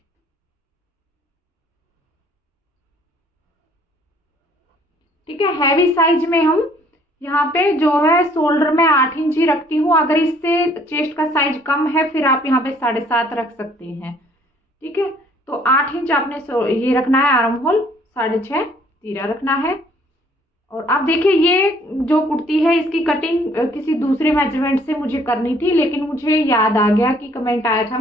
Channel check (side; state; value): both; normal; correlation 0.60